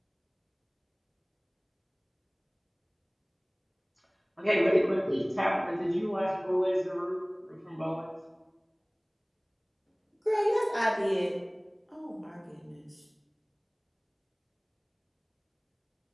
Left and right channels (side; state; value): both; identical; correlation 1.00